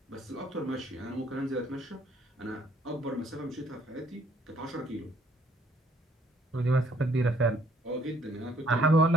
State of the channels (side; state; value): both; normal; correlation 0.64